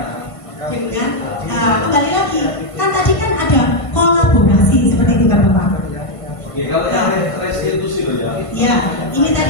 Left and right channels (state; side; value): late; right; 1.5 ms